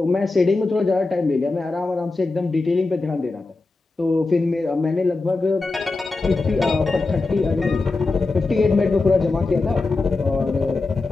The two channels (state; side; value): quieter; right; 3.5 dB